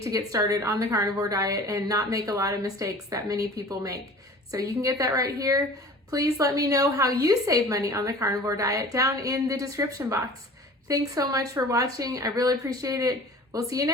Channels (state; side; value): normal; both; correlation 0.43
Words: get started on the carnivore diet and not make a lot of mistakes that many people make. So you can get that right here. Please let me know how you save money on the carnivore diet down in the description box. Thanks so much for watching. I really appreciate it. We'll see you